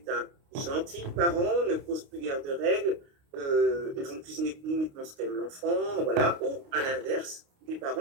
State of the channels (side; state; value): left; late; 29 ms